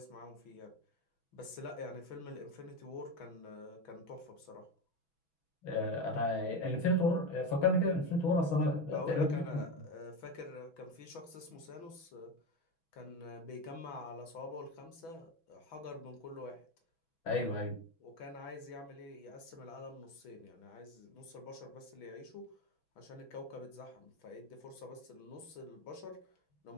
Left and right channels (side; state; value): right; late; 6.1 ms